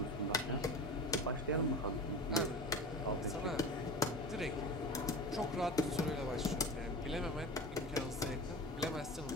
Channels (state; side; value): normal; both; correlation 0.32